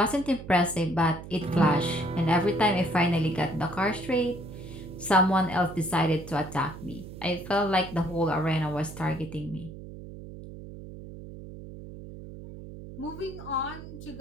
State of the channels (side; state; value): right; noise; hum, 13 dB below the sound